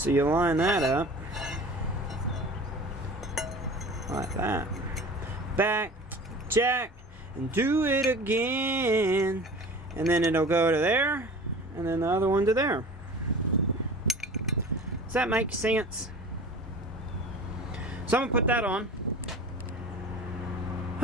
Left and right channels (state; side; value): normal; both; correlation 0.39